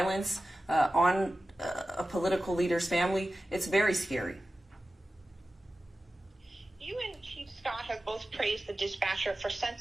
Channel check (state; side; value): normal; both; correlation 0.95